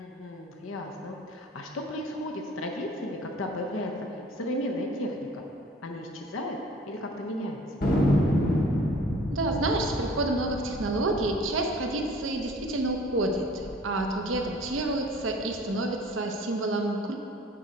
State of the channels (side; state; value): both; normal; correlation 0.49